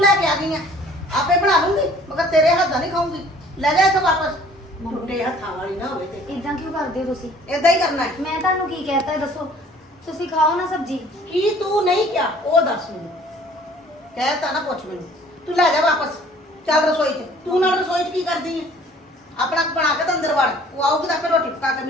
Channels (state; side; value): normal; both; correlation 0.53